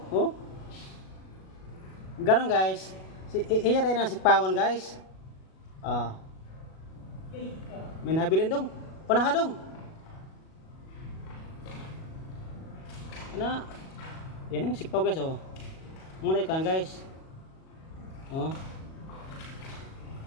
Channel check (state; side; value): late; right; 37 ms